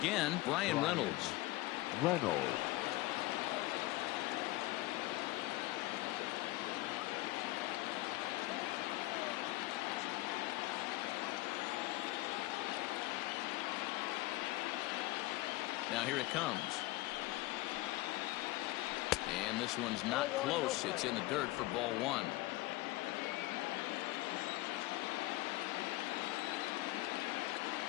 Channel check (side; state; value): right; quieter; 19.3 dB